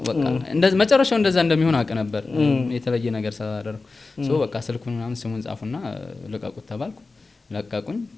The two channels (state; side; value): quieter; right; 3.8 dB